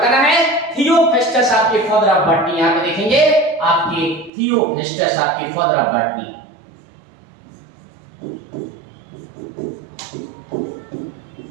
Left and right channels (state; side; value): drops out; left; at 4.3 s